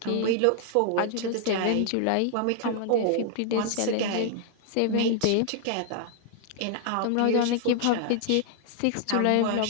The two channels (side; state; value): both; different; correlation 0.00